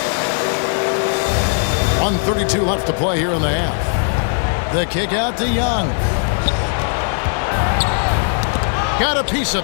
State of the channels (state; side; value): silent; right; 67 dB below the other